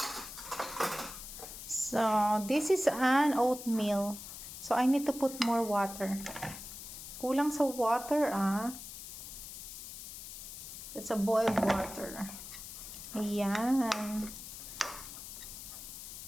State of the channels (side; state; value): left; noise; hiss, 11 dB below the sound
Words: So, this is an oatmeal. So, I need to put more water. Kulang sa water, ah. It's a boiled water. Ayan.